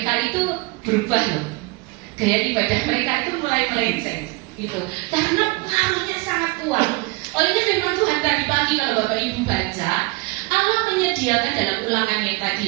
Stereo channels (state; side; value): quieter; left; 25.1 dB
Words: itu berubah loh. Gaya ibadah mereka itu mulai melenceng, gitu. Karena pengaruhnya sangat kuat. Olehnya firman Tuhan tadi pagi kalau Bapak Ibu baca, Allah menyediakan dalam ulangan yang